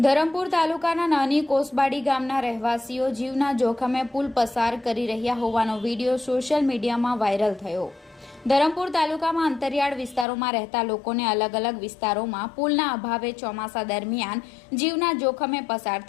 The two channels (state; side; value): drops out; right; at 10.2 s